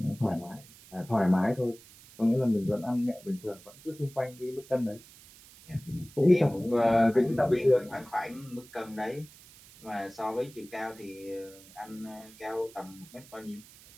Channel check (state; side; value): noise; right; hiss, 22 dB below the sound